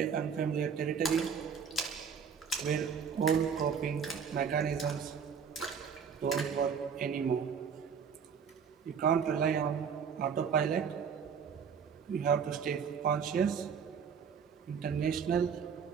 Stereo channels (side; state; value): left; quieter; 6.8 dB